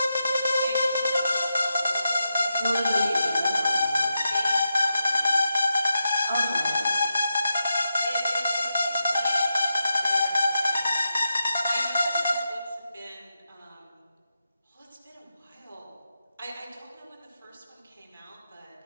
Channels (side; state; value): both; inverted; correlation -0.88